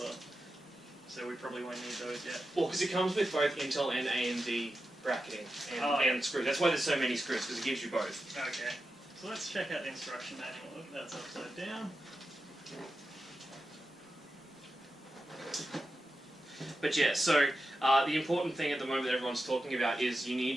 So we probably won't need those yet. Well, because it comes with both Intel and AMD bracketing and screws. That's why there's so many screws, because it gives you both. Okay. So let's check out the instruction manual. That's upside down. But yeah, so the important thing at the moment that everyone's talking about is you need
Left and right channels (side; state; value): both; normal; correlation 0.90